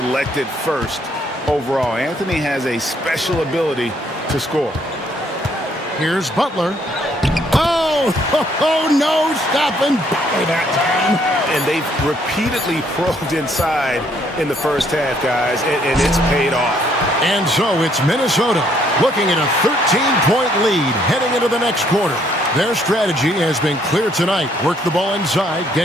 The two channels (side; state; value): both; normal; correlation 0.67